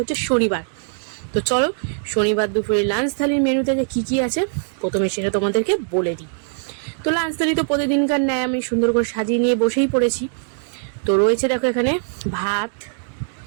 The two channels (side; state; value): left; silent; digital silence